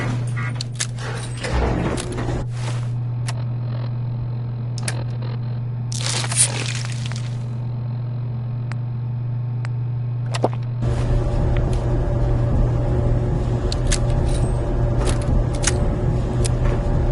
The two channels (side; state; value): both; identical; correlation 1.00